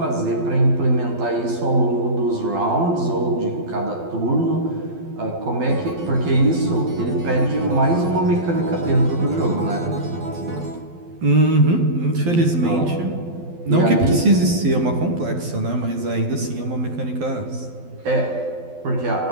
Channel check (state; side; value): late; left; 12 ms